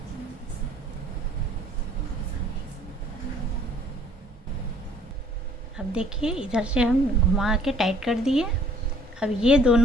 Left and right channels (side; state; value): both; normal; correlation 0.57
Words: अब देखिए इधर से हम घुमा के टाइट कर दिए। अब ये